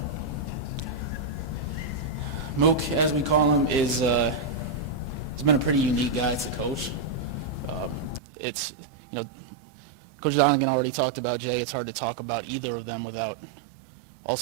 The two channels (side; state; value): left; drops out; at 8.2 s